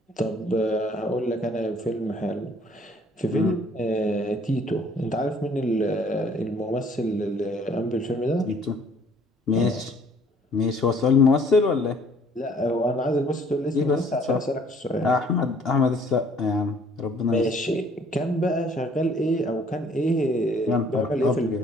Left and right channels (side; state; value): both; normal; correlation 0.58